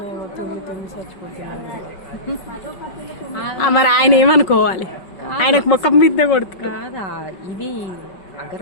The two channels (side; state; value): right; late; 5.4 ms